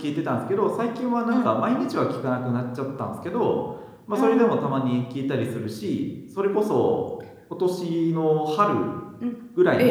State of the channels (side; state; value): both; identical; correlation 1.00